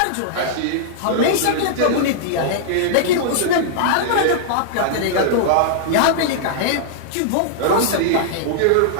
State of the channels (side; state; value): both; different; correlation -0.01